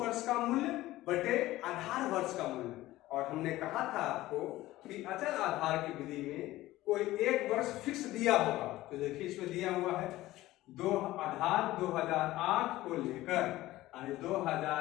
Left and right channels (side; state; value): right; quieter; 16.7 dB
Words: का मूल्य बटे आधार वर्ष का मूल्य। और हमने कहा था आपको कि अचल आधार की विधि में कोई एक वर्ष फिक्स दिया होगा। तो देखिए इसमें दिया हुआ है आधार 2008 को लेकर, यानी